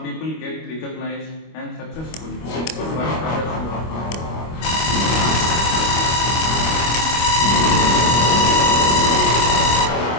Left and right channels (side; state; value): right; late; 25 ms